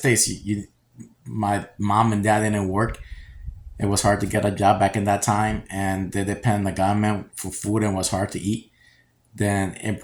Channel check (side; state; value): both; identical; correlation 1.00